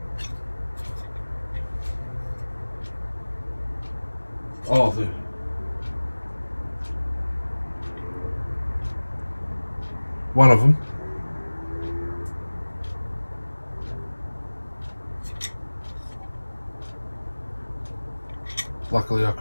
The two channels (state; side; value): inverted; both; correlation -1.00